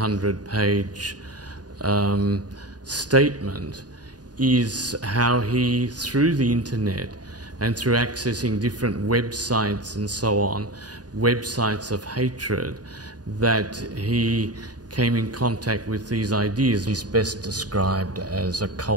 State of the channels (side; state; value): left; late; 0.69 ms